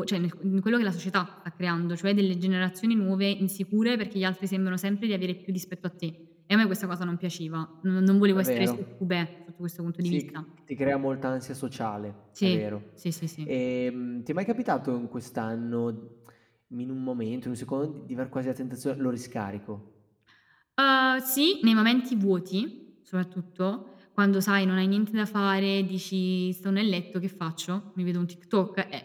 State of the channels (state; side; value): identical; both; correlation 1.00